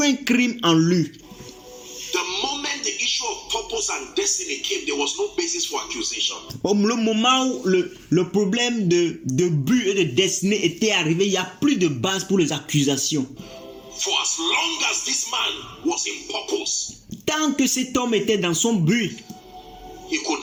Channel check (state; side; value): identical; both; correlation 1.00